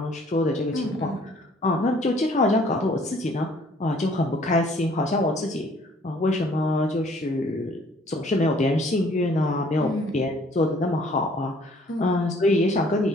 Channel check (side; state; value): both; normal; correlation 0.58